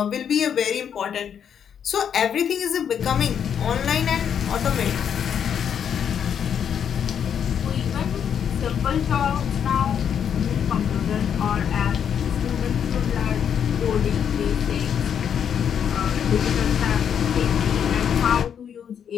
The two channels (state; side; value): quieter; right; 8.2 dB